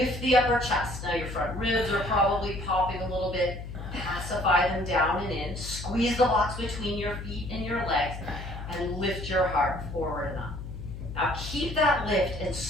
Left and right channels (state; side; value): noise; left; hum, 9 dB below the sound